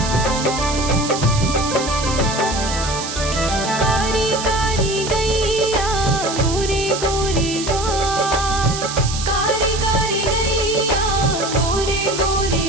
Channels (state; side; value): noise; right; hiss, 6 dB below the sound